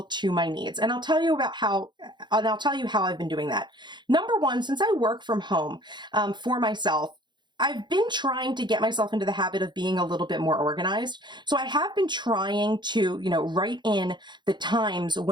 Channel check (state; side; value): late; left; 0.22 ms